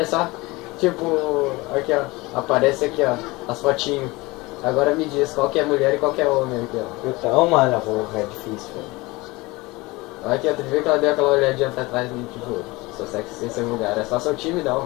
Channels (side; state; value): right; quieter; 22.5 dB